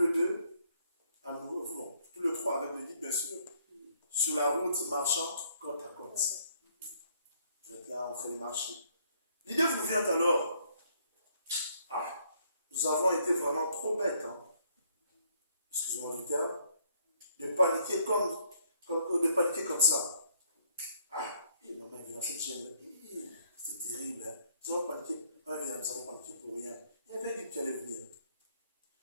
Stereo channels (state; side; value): inverted; both; correlation -0.67